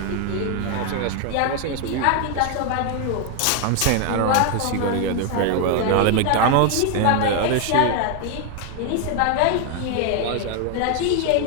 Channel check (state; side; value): different; both; correlation 0.01